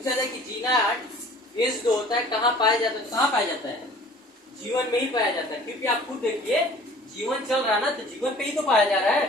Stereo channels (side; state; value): both; normal; correlation 0.49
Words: जाए कि G0 फेज जो होता है कहाँ पाया जाता है, तो कहाँ पाया जाता है, G1 में ही पाया जाता है। क्योंकि आप खुद देखिए G1 चल रहा है ना, तो G1 पे ही तो पाया जा रहा है,